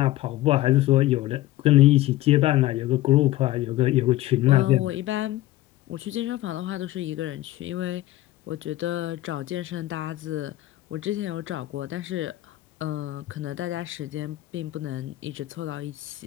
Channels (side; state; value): right; quieter; 16.2 dB